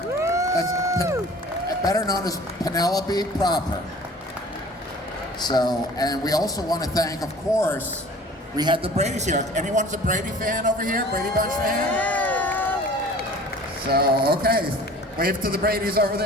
That's better known as Penelope proper. So, and we also want to thank, of course, we had the Brady's here. Anyone's a Brady fan over here? Brady Bunch fan? So, okay. Wave to the Brady's over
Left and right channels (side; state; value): both; normal; correlation 0.46